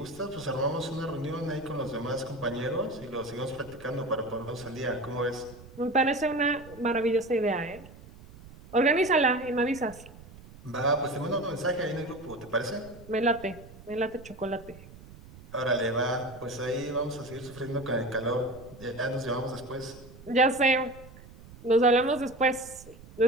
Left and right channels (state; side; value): noise; right; rumble, 19 dB below the sound